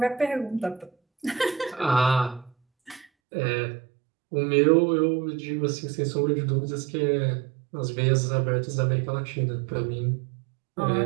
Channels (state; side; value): drops out; left; at 3.1 s